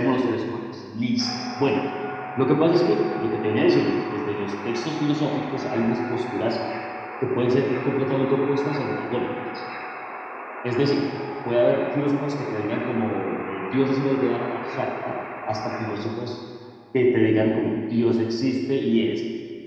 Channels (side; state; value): both; identical; correlation 1.00